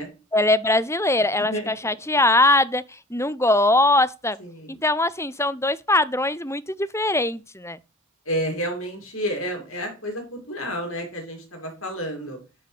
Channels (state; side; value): normal; both; correlation 0.41